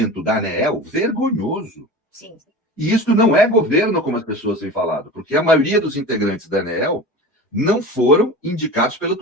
da ANEEL vergonhoso. Sim. E isso não é governo, como as pessoas têm falado, porque a maioria dos integrantes da ANEEL não foram indicados pelo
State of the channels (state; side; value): normal; both; correlation 0.34